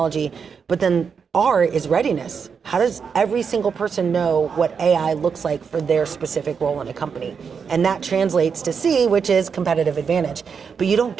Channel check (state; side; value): quieter; left; 6.2 dB